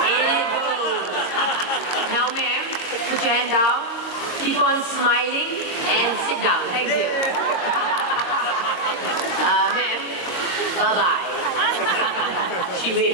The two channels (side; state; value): right; late; 22 ms